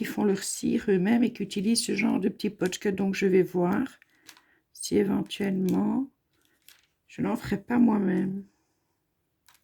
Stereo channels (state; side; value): identical; both; correlation 1.00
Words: font leur cire eux-mêmes et qui utilisent ce genre de petits potchka. Donc, je vais voir si éventuellement, je n'en ferai pas moi-même.